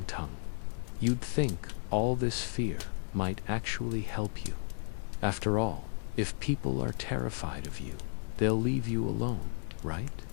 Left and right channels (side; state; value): right; silent; digital silence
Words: tongue. You'd think all this fear might actually help you. After all, if people are terrified of you, they'll leave you alone, right?